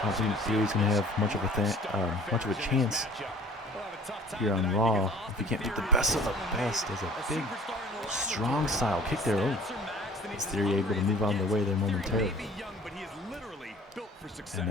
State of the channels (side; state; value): both; normal; correlation 0.50